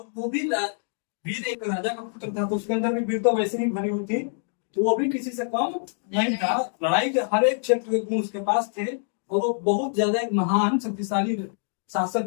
वो भी वीर एक राजा का पुत्र था, तो उसके अंदर भी वीर तो वैसे ही भरी हुई थी, तो वो भी किसी से कम नहीं था। लड़ाई के हर एक क्षेत्र के गुण उसके पास थे, और वो बहुत ज्यादा एक महान शक्तिशाली शासक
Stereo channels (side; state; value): right; silent; digital silence